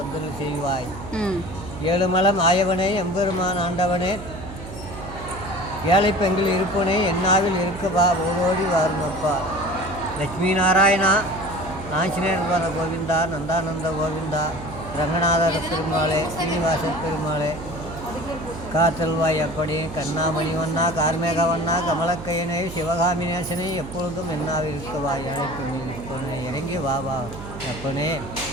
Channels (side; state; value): right; noise; hum, 12 dB below the sound